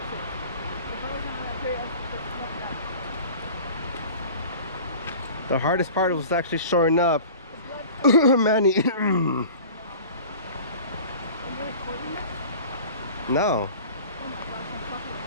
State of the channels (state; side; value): inverted; both; correlation -0.41